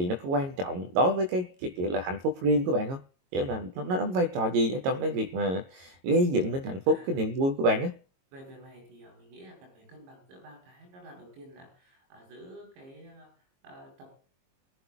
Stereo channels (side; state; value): left; late; 22 ms